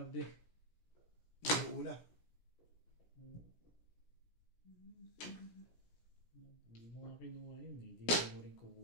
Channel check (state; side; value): late; right; 17 ms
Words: Yung una. Hindi mo nga kinuha yun eh. Hindi mo rin